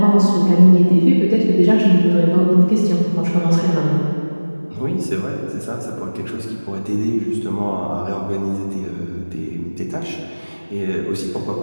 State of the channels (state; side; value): inverted; both; correlation -1.00